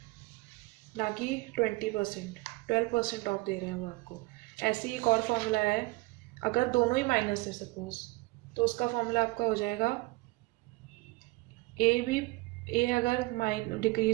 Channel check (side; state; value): left; quieter; 22.7 dB